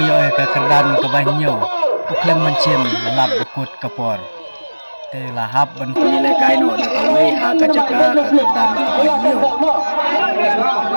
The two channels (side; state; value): both; inverted; correlation -1.00